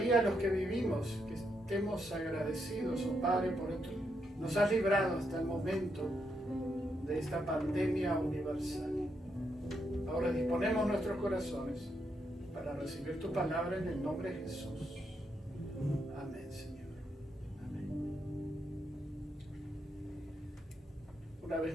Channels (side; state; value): both; normal; correlation 0.80